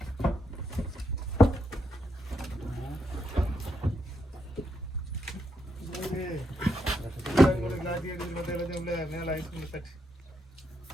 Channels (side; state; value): both; normal; correlation 0.80